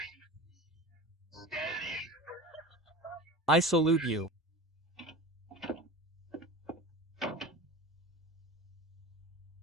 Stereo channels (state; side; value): normal; both; correlation 0.32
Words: I salute you.